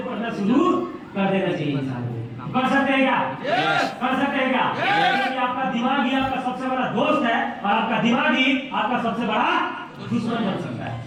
पढ़ना शुरू कर देना चाहिए इंसान को। कर सकते हैं क्या? कर सकते हैं क्या? क्योंकि आपका दिमाग ही आपका सबसे बड़ा दोस्त है और आपका दिमाग ही आपका सबसे बड़ा दुश्मन बन सकता है।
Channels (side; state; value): both; identical; correlation 1.00